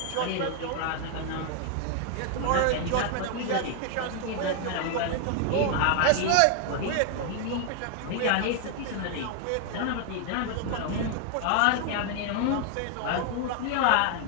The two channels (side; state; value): both; different; correlation 0.00